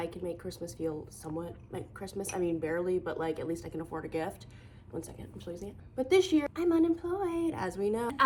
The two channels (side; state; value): both; identical; correlation 1.00